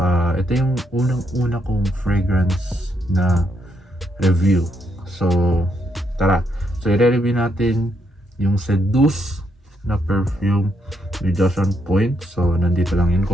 ito yung unang-una kong fragrance na review. So tara, so i-review natin yung Seduce na perfume ni Josh on Point. So nandito lang yun,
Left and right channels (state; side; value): normal; both; correlation 0.77